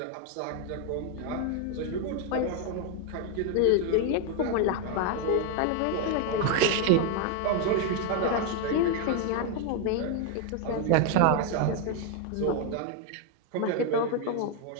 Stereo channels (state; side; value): different; both; correlation 0.01